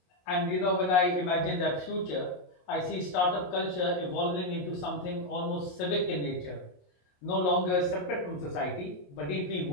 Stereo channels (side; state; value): right; late; 28 ms